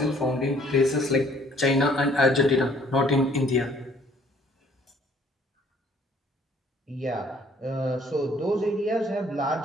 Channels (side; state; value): both; normal; correlation 0.59